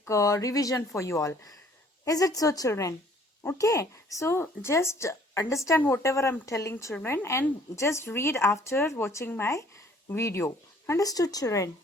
revision for you all. Is it so, children? Okay, so just understand whatever I'm telling, children, and just read after watching my video. Understood, children?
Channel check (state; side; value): normal; both; correlation 0.57